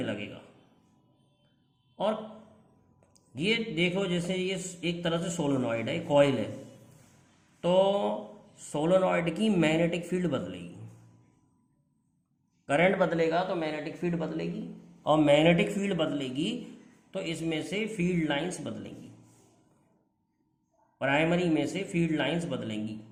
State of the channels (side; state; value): both; identical; correlation 1.00